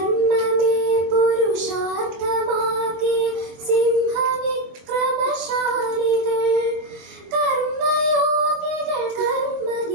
പുരുഷാർത്ഥമാകെ സിംഹവിക്രമശാലികൾ കർമ്മയോഗികൾ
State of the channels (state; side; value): late; left; 24 ms